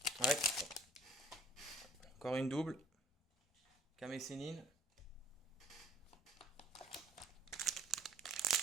Ouais. Encore une double. Kame Sennin.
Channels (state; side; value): normal; both; correlation 0.53